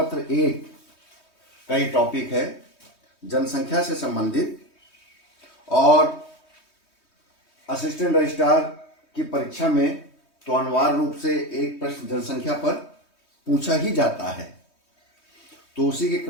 एक का ही टॉपिक है जनसंख्या से संबंधित। और असिस्टेंट रजिस्ट्रार की परीक्षा में तो अनिवार्य रूप से एक प्रश्न जनसंख्या पर पूछा ही जाता है। तो उसी के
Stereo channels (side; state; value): right; late; 3.2 ms